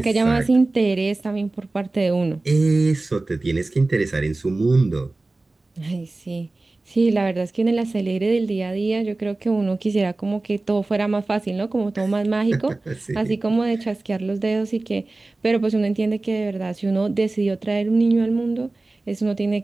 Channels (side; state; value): left; quieter; 3.1 dB